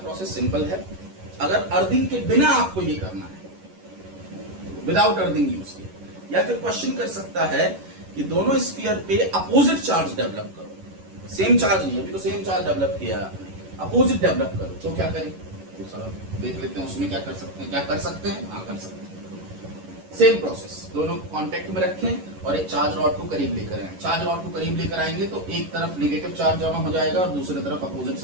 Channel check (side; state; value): left; late; 11 ms